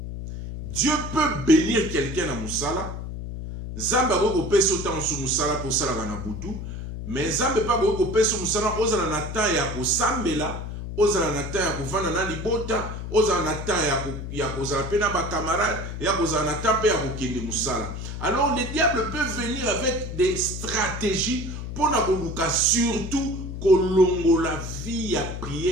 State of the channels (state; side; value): noise; left; hum, 7 dB below the sound